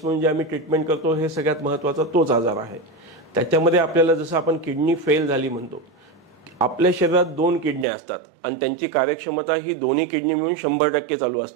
म्हणून जे आम्ही ट्रीटमेंट करतो, हे सगळ्यात महत्त्वाचा तोच आजार आहे. त्याच्यामध्ये आपल्याला जसं आपण किडनी फेल झाली म्हणतो, आपल्या शरीरात 2 किडन्या असतात आणि त्यांची कार्यक्षमता ही दोन्ही किडनी मिळून 100% चालू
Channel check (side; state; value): left; drops out; at 7.9 s